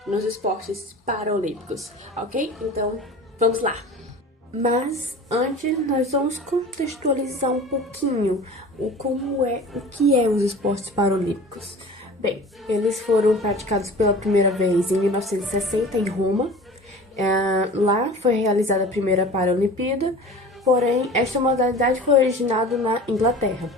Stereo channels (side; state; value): both; normal; correlation 0.39